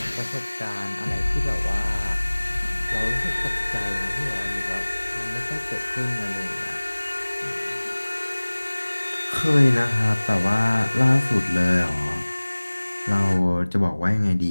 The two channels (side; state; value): both; inverted; correlation -1.00